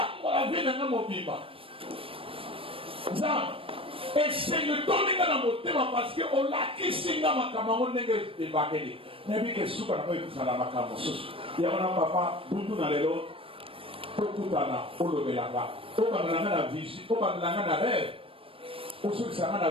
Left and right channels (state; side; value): late; left; 0.26 ms